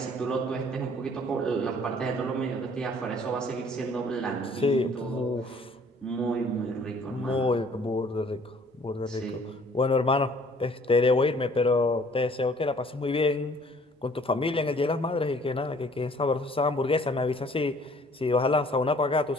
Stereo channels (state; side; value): normal; both; correlation 0.56